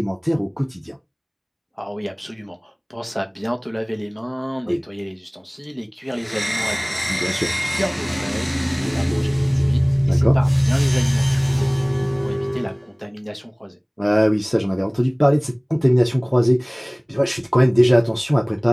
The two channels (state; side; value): identical; both; correlation 1.00